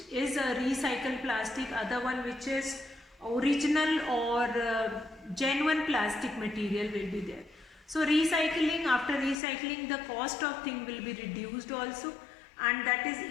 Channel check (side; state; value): right; drops out; at 9.3 s